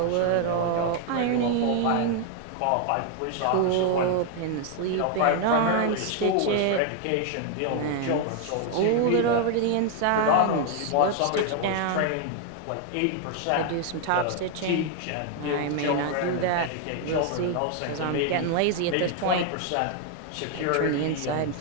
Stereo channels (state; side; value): different; both; correlation 0.00